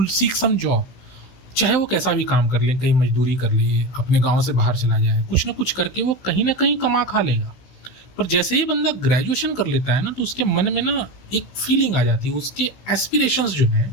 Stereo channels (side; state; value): right; late; 16 ms